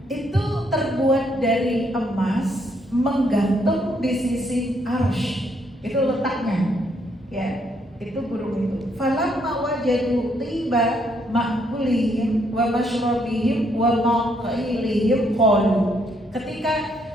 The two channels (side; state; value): both; normal; correlation 0.72